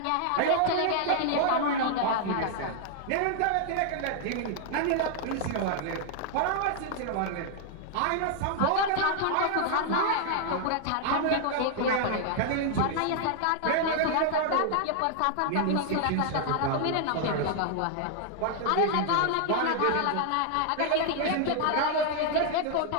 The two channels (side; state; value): both; different; correlation 0.00